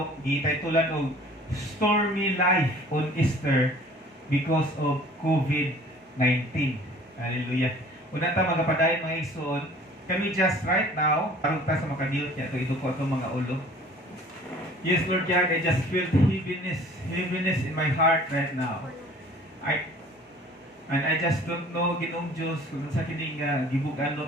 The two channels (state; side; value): normal; both; correlation 0.50